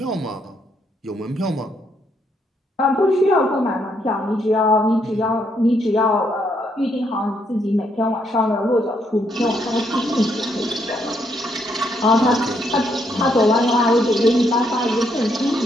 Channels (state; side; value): normal; both; correlation 0.74